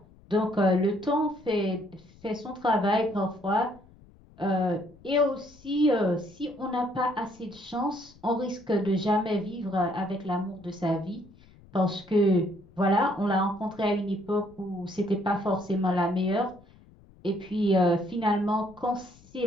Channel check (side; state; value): left; noise; rumble, 25 dB below the sound